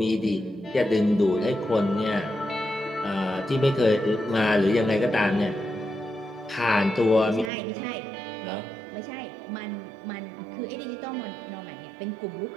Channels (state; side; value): drops out; left; at 7.5 s